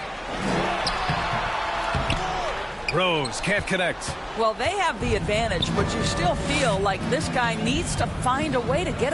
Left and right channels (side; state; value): both; identical; correlation 1.00